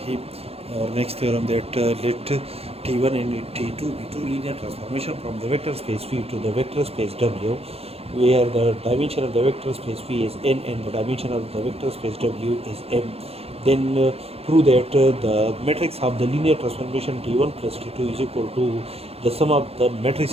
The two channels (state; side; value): late; left; 0.29 ms